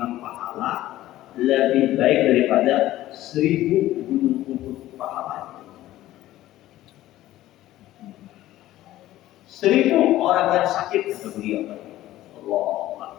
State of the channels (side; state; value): right; quieter; 14.9 dB